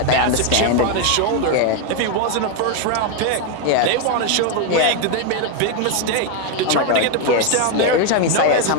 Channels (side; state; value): both; different; correlation 0.01